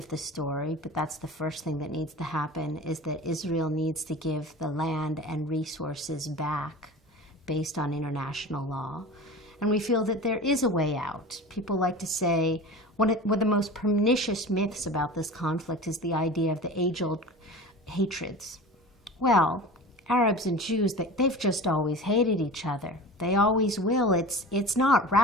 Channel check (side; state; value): both; normal; correlation 0.35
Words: the story, but that's the first thing that needs to happen, is that Israel needs to give the land and resources back based on international law. And we feel that there is a way out. People like to say, one of the most pernicious myths about this conflict is the idea of the age-old hatreds. Well, Arabs and Jews, they've just always hated each other. They always will. It's not